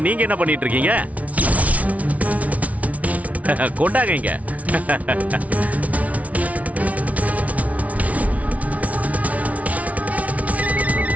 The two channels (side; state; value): left; late; 0.068 ms